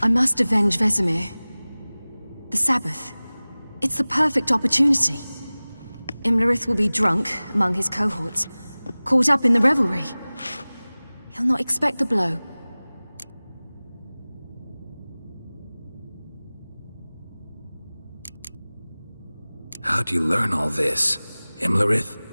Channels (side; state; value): both; inverted; correlation -0.99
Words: I must avenge Vesemir. The Sabbath. It's the perfect opportunity. Imlerith will be drunk among his cohorts, caught up in the revelry. He'll not expect the blow. How'd you learn all this? Imlerith?